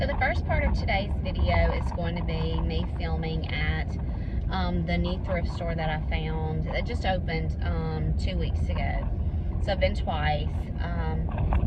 the first part of today's video is going to be me filming at the new thrift store that I found that just opened 2 weeks ago. So I've been twice,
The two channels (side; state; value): both; identical; correlation 1.00